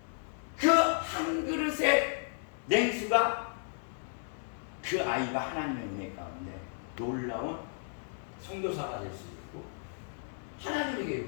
그 한 그릇의 냉수가 그 아이가 하나님의 은혜 가운데 놀라운 선교사가 될 수 있고, 하나님의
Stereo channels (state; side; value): silent; right; digital silence